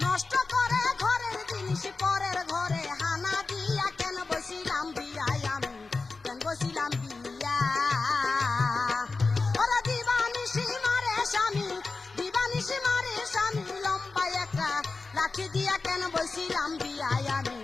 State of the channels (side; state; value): right; quieter; 3.9 dB